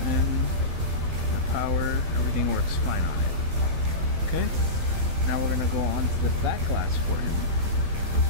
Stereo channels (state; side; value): late; left; 12 ms